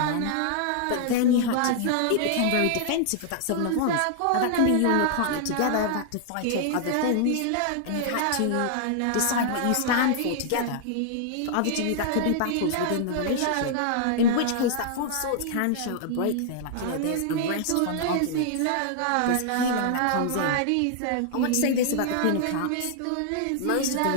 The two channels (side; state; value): both; different; correlation -0.01